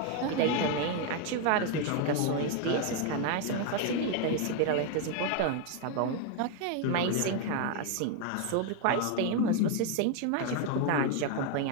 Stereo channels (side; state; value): both; different; correlation 0.01